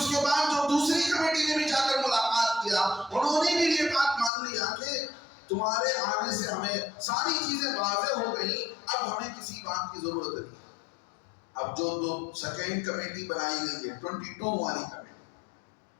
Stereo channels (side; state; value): right; drops out; at 4.3 s